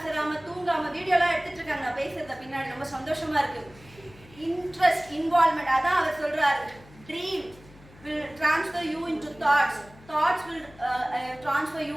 தூங்காம வீடியோலாம் எடுத்துட்டு இருக்காங்க நான் பேசுறத பின்னாடி. ரொம்ப சந்தோஷமா இருக்கு. இன்ட்ரெஸ்ட், இன்வால்மெண்ட், அதான் அவர் சொல்றாரு. Dream will transfer you into thoughts. Thoughts will transfer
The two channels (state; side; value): noise; left; hum, 23 dB below the sound